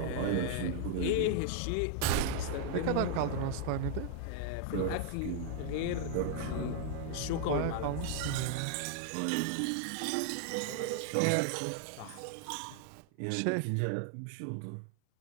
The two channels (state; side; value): different; both; correlation -0.01